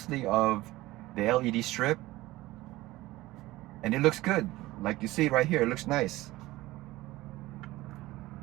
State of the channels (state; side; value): quieter; left; 18.1 dB